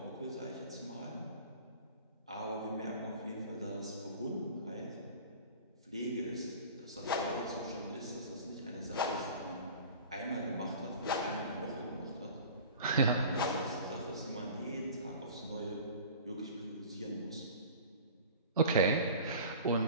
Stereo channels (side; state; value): both; inverted; correlation -0.41